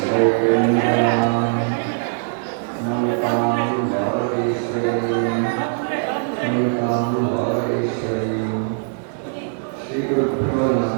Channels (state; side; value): silent; left; digital silence